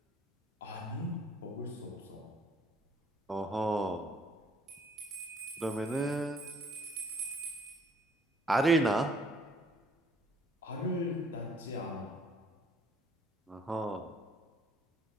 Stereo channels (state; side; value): normal; both; correlation 0.61